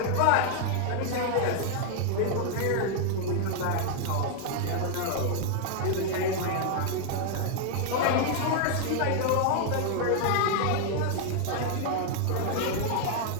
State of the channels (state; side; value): different; both; correlation 0.00